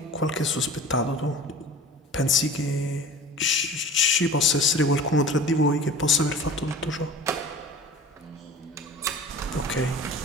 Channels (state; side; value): normal; both; correlation 0.40